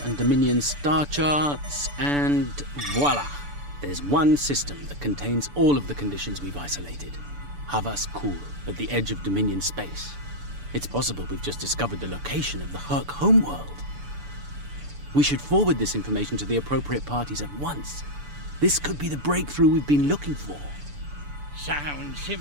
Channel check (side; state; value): left; late; 6.9 ms